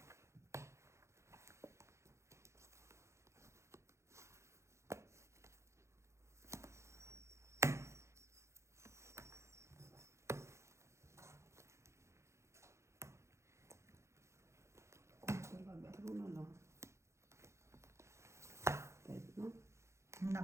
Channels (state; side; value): late; left; 0.14 ms